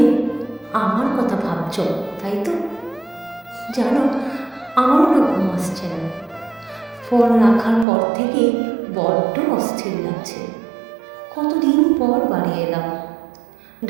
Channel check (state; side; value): drops out; left; at 7.9 s